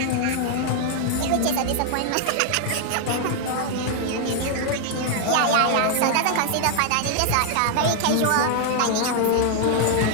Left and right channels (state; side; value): different; both; correlation 0.00